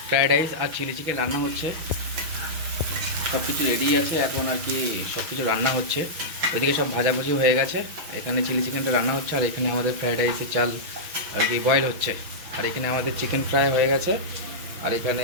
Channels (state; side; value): late; left; 6.2 ms